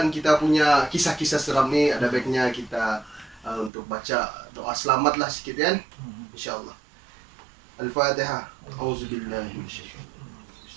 kita punya kisah-kisah seram ni, ada baiknya kita untuk baca doa selamatlah sikit kan, insyaallah. Al-Fatihah. Auzubillahi minasyaitonir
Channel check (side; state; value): left; drops out; at 3.7 s